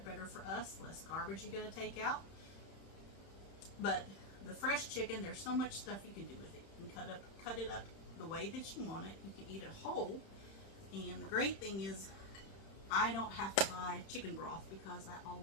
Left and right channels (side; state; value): right; late; 31 ms